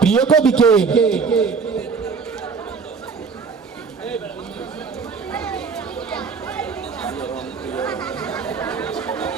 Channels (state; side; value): quieter; left; 5.3 dB